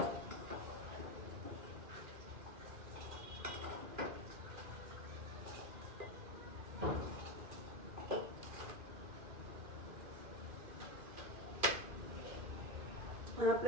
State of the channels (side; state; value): left; late; 2.4 ms